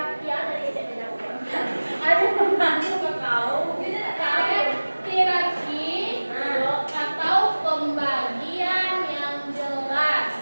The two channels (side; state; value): both; inverted; correlation -1.00